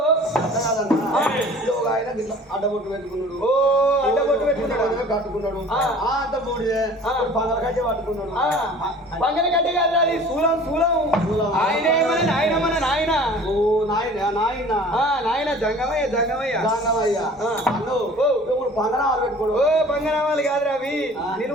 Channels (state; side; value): normal; both; correlation 0.46